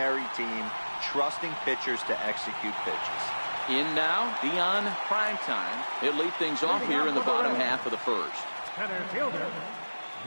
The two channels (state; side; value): inverted; both; correlation -1.00